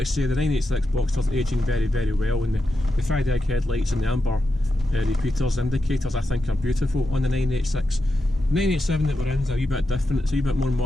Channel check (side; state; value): both; normal; correlation 0.88